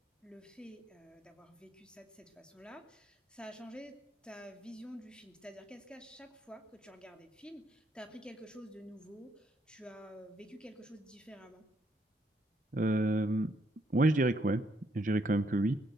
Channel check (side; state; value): both; normal; correlation 0.73